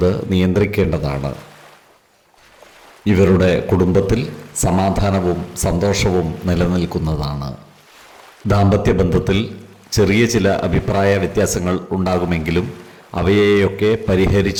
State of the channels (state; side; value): identical; both; correlation 1.00